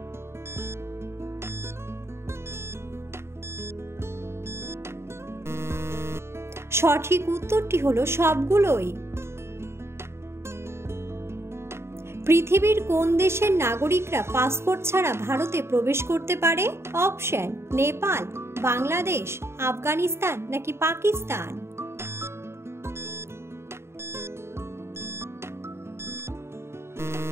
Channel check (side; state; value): left; late; 0.12 ms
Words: সঠিক উত্তরটি হলো সবগুলোই। পৃথিবীর কোন দেশের নাগরিকরা পাসপোর্ট ছাড়া ভারতে প্রবেশ করতে পারে? অপশন: নেপাল, বাংলাদেশ, আফগানিস্তান নাকি পাকিস্তান?